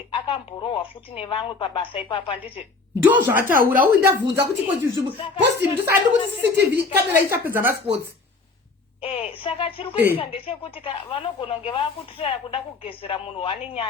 akamborohwa futi nevamwe pabasa ipapa nditi ndo zvataura uyu ndabvunza kuti posti ndisandi kuti CCTV kamera ichapedza masports Saka chiri kuitika ndechekuti vanogona kunge vakutirira kuda kugezera munhu wane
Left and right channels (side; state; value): right; quieter; 3.9 dB